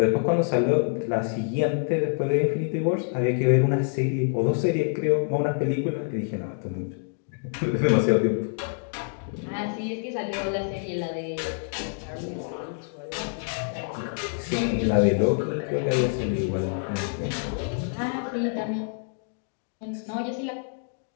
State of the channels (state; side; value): silent; right; digital silence